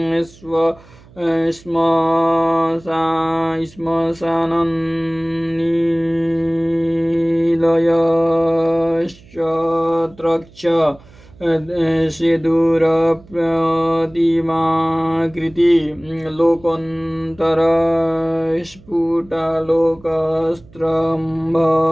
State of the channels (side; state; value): right; noise; hum, 25 dB below the sound